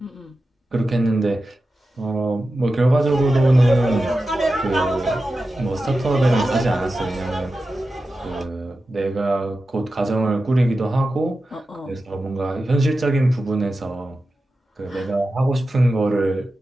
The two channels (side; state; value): both; normal; correlation 0.92